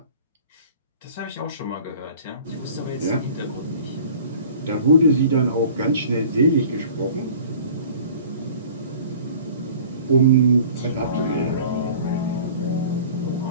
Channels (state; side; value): inverted; both; correlation -0.46